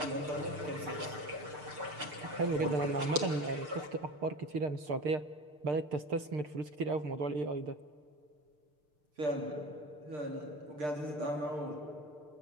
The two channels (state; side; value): late; left; 6.7 ms